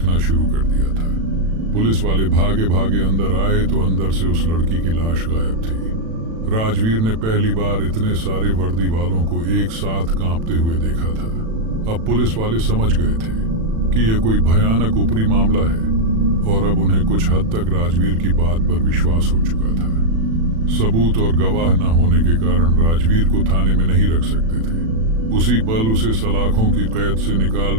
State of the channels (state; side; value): late; left; 36 ms